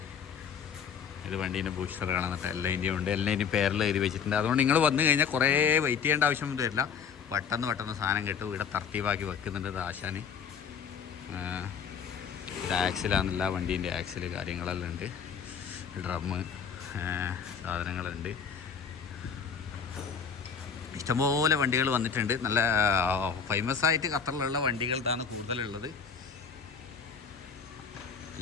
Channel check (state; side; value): quieter; right; 6.7 dB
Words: ഇത് വണ്ടീൻ്റെ ബൂസ്റ്റർ കാണുന്നിട്ട് എല്ലാതിൻ്റെയും ഉണ്ട്. എല്ലാതിൻ്റെയും പേരെല്ലാം എഴുതി വെച്ചിട്ടുണ്ട്. അതുകൊണ്ട് നിങ്ങൾ വന്നു കഴിഞ്ഞാൽ കുറേ വെയിറ്റ് ചെയ്യേണ്ട ആവശ്യമൊന്നും വരില്ല. പെട്ടെന്ന് സാധനം കിട്ടും. ഇവിടെ തർത്തീവാക്കി വെക്കുന്നുണ്ട് ആശാന്. ഇത് ആക്സിലാണെന്നില്ല, വണ്ടീൻ്റെ ആക്സിൽ കാര്യങ്ങളെല്ലാം ഉണ്ട്. ഡ്രമ്മ് സാധനങ്ങളുണ്ട്. ഇഷ്ടംപോലെ വണ്ടികൾ വന്നിട്ടുണ്ട്. നല്ല ഫേമസ് ആയിട്ട് ഖത്തറിലുള്ള വണ്ടികളാണ് കൂടുതലുള്ളത്.